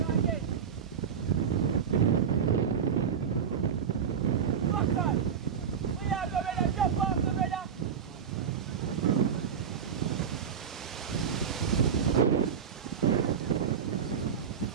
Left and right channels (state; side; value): quieter; left; 7.3 dB